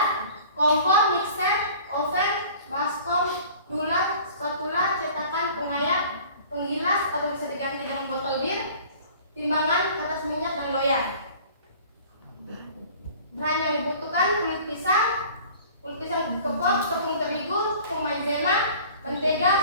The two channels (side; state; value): both; inverted; correlation -0.47